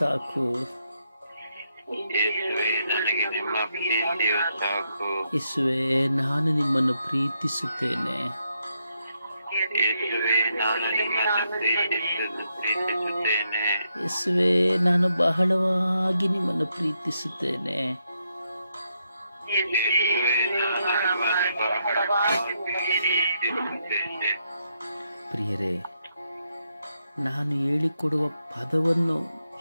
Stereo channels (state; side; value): inverted; both; correlation -0.80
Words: ಯೇಸುವೇ, ನಾನು ನಿಮ್ಮನ್ನು ಪ್ರೀತಿಸುತ್ತೇನೆ. ಯೇಸುವೇ, ನಾನು ಬಹಳವಾಗಿ ನಿಮ್ಮನ್ನು ಪ್ರೀತಿಸುತ್ತೇನೆ. ಪ್ರಿಯರೇ, ನಾನು ಹೇಳಿಕೊಡುವ ಪದವನ್ನು